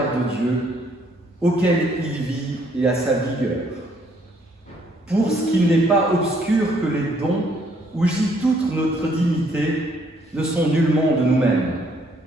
de Dieu, auquel il vit et à sa vigueur. Pour ce qu'il n'est pas obscur que les dons, où gît toute notre dignité, ne sont nullement de nous-mêmes,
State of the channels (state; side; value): normal; both; correlation 0.67